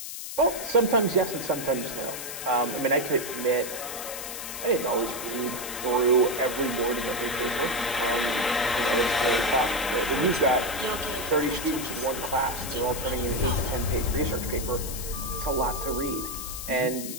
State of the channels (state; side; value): noise; left; hiss, 8 dB below the sound